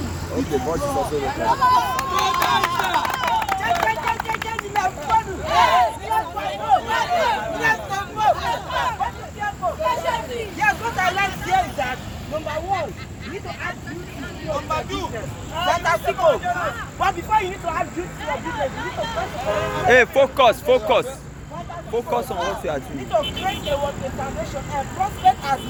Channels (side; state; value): both; identical; correlation 1.00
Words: Okay, boss is also the Yes, what I like here is that number one, you need to add beauty to your business. Fantastic. But before you need to add beauty to your business, you need to first of all. Hey, focus. Focus on what you are You doing. need to create a foundation and prospect as